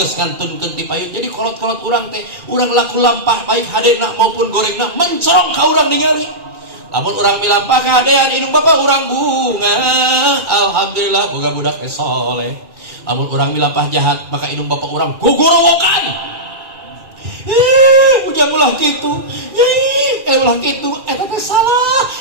ngantunkeun ti payun jadi kolot-kolot urang teh urang laku lampah baik hadena maupun gorengna mencorong ka urang ningali lamun urang milampah ka hadean indung bapa urang bunga alhamdulillah boga budak soleh lamun urang milampah jahat maka indung bapa urang gogorowokan ujang ulah gitu ulah gitu eta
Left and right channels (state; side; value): late; left; 2.4 ms